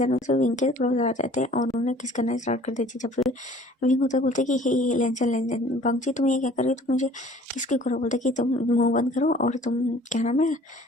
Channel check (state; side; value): normal; both; correlation 0.52